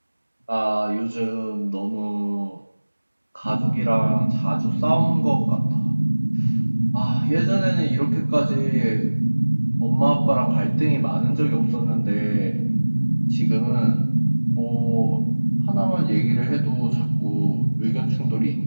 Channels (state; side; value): inverted; both; correlation -1.00